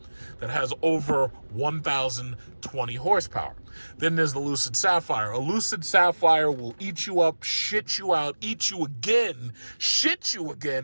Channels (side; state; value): both; inverted; correlation -1.00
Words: that has over 1,020 horsepower. Then there's the Lucid Sapphire. A Lucid Sapphire will eat you up, shit you out, eat you again, shit you